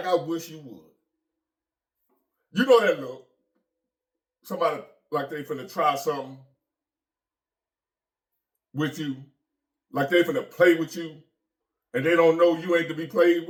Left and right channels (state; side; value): identical; both; correlation 1.00